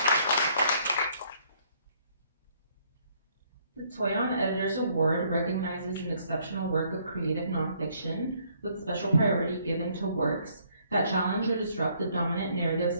The Toyon Editors Award recognizes an exceptional work of creative nonfiction with special priority given to works that challenge or disrupt the dominant narratives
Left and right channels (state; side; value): inverted; both; correlation -0.66